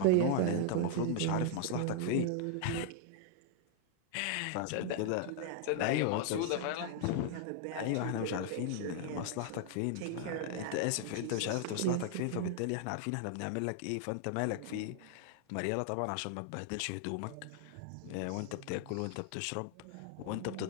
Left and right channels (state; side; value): different; both; correlation 0.00